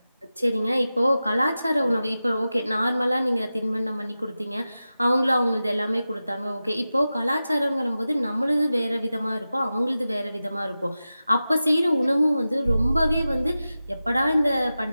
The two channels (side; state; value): both; inverted; correlation -0.94